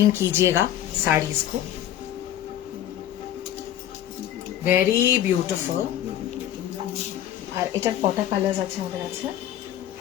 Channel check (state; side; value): quieter; right; 11.6 dB